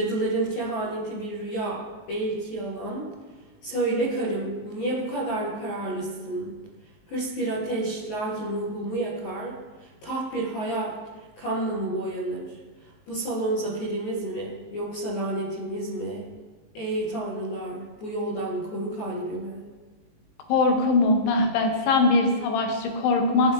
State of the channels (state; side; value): late; right; 19 ms